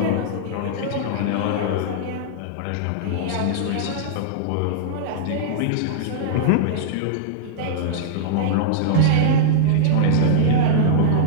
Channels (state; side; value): different; both; correlation -0.02